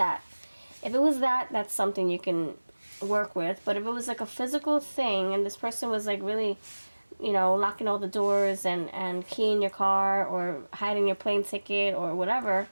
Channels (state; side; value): inverted; both; correlation -1.00